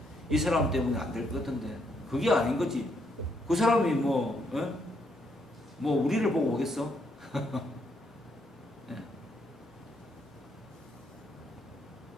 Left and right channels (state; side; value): normal; both; correlation 0.75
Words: 이 사람 때문에 안 될 것 같은데 그게 아닌 거지. 그 사람이 뭐 우리를 보고 오겠어?